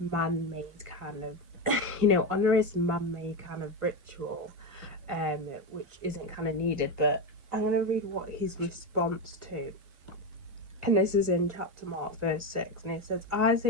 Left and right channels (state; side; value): late; left; 1.5 ms